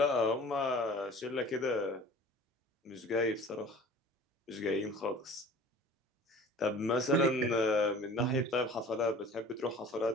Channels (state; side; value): normal; both; correlation 0.44